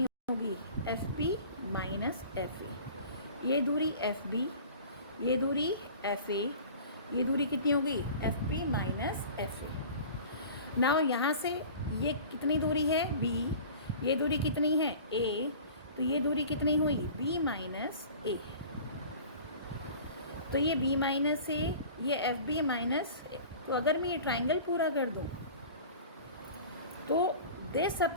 होगी, एफ पी माइनस एफ ए। ये दूरी एफ बी, ये दूरी एफ ए, ये दूरी कितनी होगी, एफ पी माइनस एफ ए। नाउ यहाँ से ये कितनी दूरी है बी, ये दूरी कितनी है ए, तो ये दूरी कितनी हुई बी माइनस ए। तो ये b माइनस ए, ये एफ बी माइनस। तो अगर मैं ये ट्राइंगल पूरा कर दूँ तो this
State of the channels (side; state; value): both; inverted; correlation -0.42